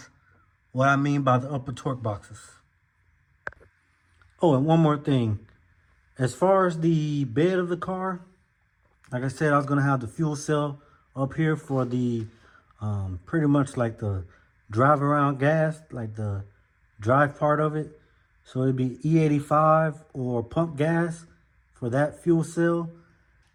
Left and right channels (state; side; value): identical; both; correlation 1.00